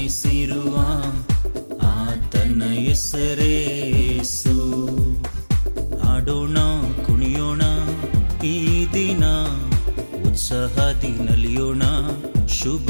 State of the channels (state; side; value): inverted; both; correlation -1.00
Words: ಆತನ ಹೆಸರೇ ಯೇಸು. ಆಡೋಣ ಕುಣಿಯೋಣ ಈ ದಿನ, ಉತ್ಸಾಹದಿ ನಲಿಯೋಣ ಶುಭ